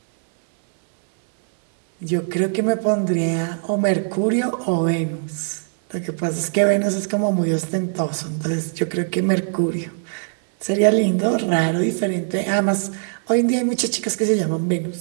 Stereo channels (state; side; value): silent; left; 60 dB below the other